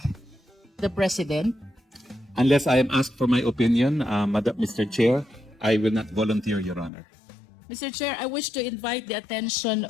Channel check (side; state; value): right; drops out; at 6.9 s